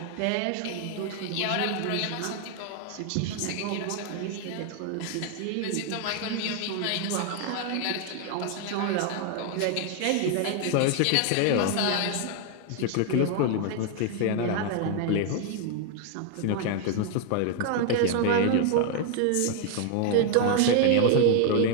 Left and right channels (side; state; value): both; different; correlation 0.00